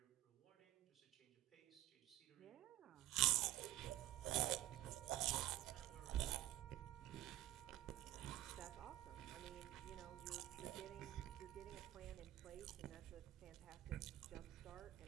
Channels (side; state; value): left; quieter; 14.9 dB